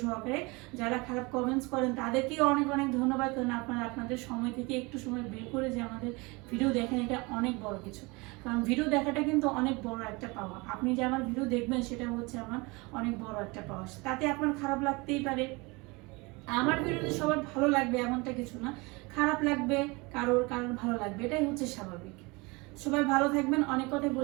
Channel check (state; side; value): quieter; left; 25.9 dB